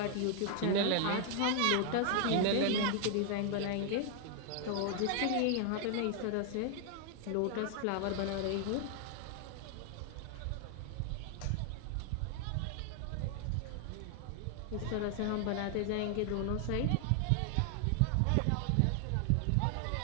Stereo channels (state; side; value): different; both; correlation 0.00